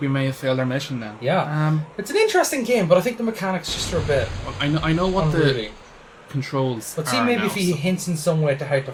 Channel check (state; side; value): identical; both; correlation 1.00